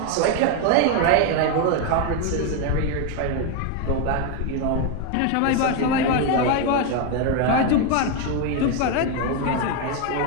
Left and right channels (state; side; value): different; both; correlation 0.01